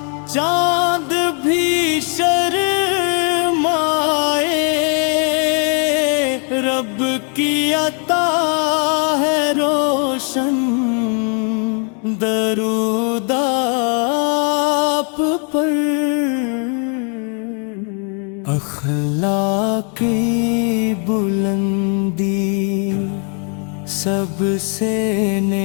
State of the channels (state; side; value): quieter; right; 40.0 dB